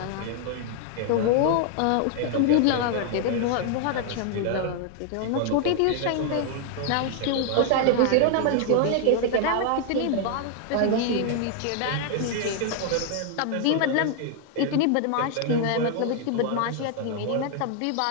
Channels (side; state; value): both; different; correlation 0.00